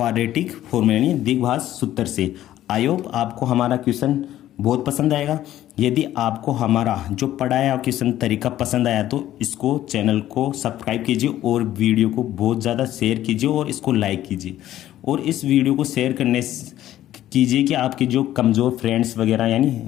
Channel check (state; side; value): quieter; right; 13.1 dB